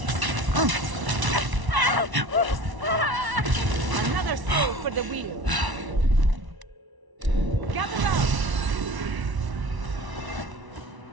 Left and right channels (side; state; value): left; late; 1.0 ms